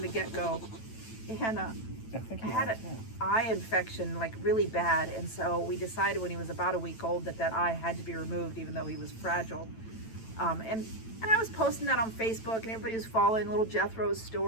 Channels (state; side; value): late; right; 9.0 ms